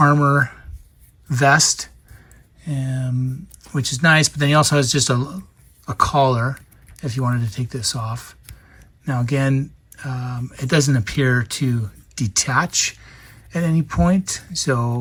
vest, which is nice. But then he also has just a collar if you wanted to take this off. Now again, it doesn't appear to detach at any point.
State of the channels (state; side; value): identical; both; correlation 1.00